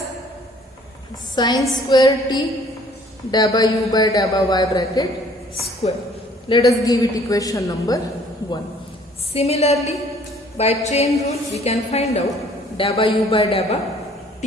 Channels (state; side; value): normal; both; correlation 0.57